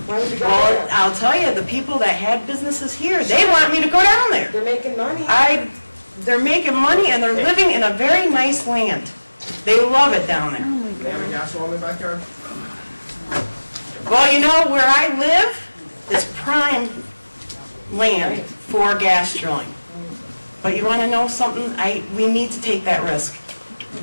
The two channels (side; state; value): both; inverted; correlation -1.00